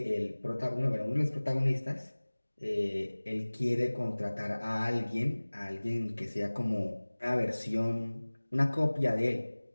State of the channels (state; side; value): inverted; both; correlation -1.00